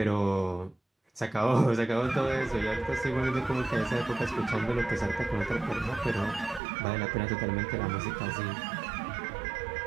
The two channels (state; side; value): drops out; left; at 6.6 s